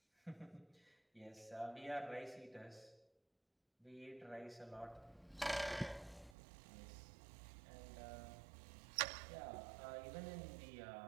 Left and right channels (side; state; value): left; drops out; at 6.4 s